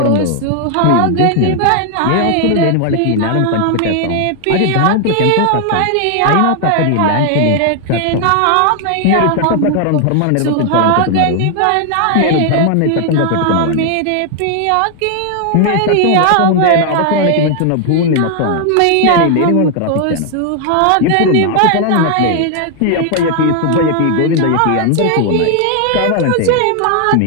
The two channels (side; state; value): both; different; correlation 0.00